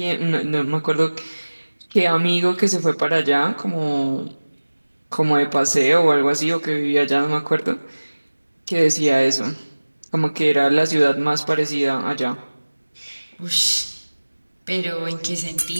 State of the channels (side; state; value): both; inverted; correlation -1.00